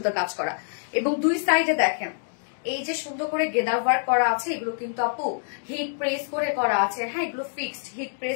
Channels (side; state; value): right; silent; digital silence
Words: কাজ করা। এবং দুই সাইডে দেখেন এই যে সুন্দর করে গেদার ওয়ার্ক করা আছে, এগুলো কিন্তু আপু হিট প্রেস করে করা আছে, হ্যাঁ, এগুলো ফিক্সড হিট